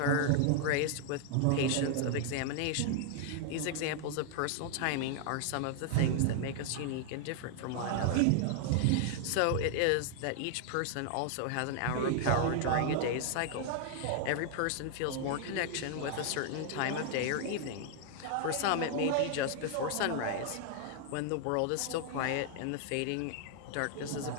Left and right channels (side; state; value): both; different; correlation 0.00